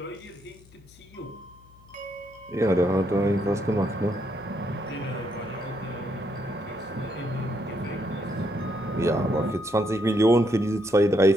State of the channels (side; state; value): left; noise; hum, 25 dB below the sound